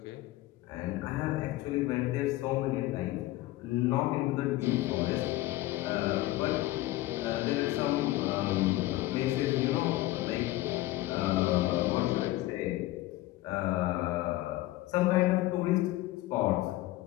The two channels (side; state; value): right; quieter; 17.1 dB